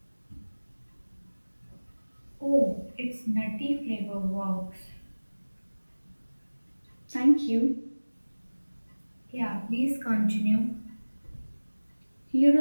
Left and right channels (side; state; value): both; inverted; correlation -1.00